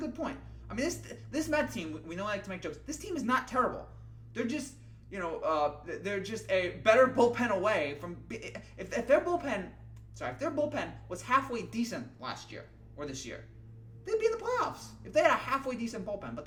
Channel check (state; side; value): identical; both; correlation 1.00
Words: point. I mean, this Met team, we know I like to make jokes. This team is not terrible. They're just they're just a better bullpen away from. If their bullpen was halfway decent last year or this year, they'd be in the playoffs. If they had a halfway decent bullpen, but